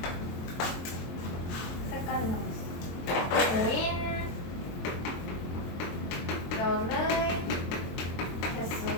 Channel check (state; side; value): late; right; 23 ms